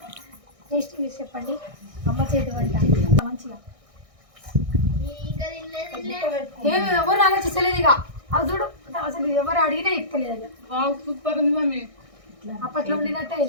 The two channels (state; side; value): late; left; 1.6 ms